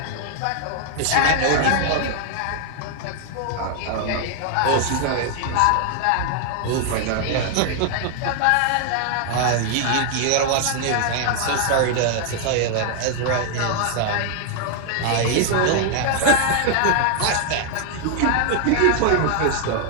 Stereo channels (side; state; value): both; different; correlation 0.00